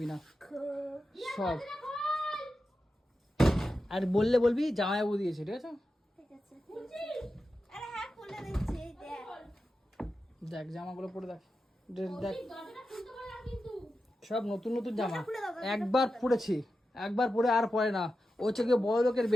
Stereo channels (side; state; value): both; normal; correlation 0.91